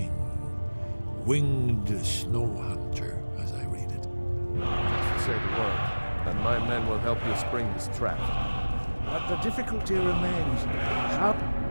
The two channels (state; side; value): inverted; both; correlation -1.00